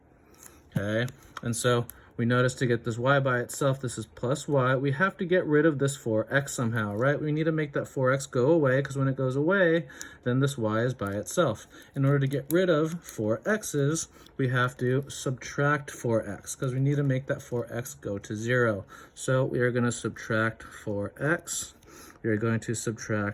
Okay, and so we notice to get this y by itself, this is plus y. We have to get rid of this 4x somehow, right? We need to make that 4x go away, because when it goes away, then this y is by itself. In order to get rid of 4x's, we have to subtract 4x, because we need to make that 4x go to 0. So we are going to subtract 4x. We are going to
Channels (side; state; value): both; identical; correlation 1.00